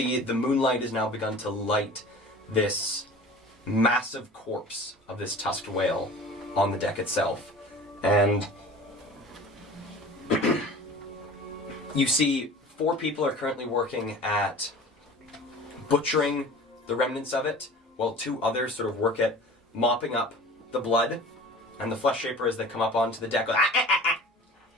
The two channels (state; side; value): normal; both; correlation 0.41